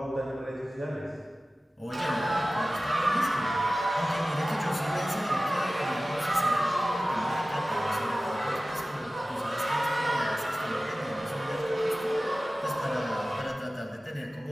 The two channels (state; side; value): normal; both; correlation 0.96